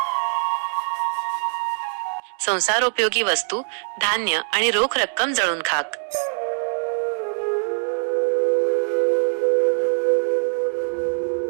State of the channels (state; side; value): silent; left; digital silence